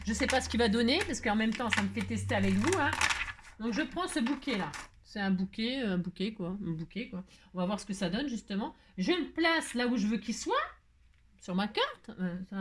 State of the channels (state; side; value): identical; both; correlation 1.00